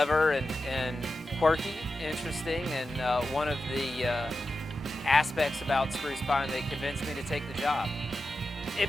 and quirky, interesting, and one of the aspects about Spruce Pine that convinced me to take the job. It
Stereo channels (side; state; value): both; normal; correlation 0.91